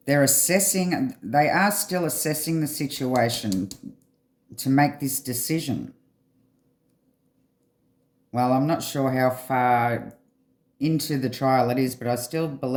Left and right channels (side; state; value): both; identical; correlation 1.00